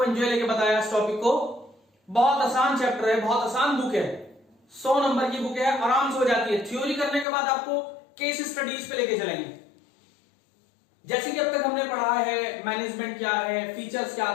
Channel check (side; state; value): right; drops out; at 7.2 s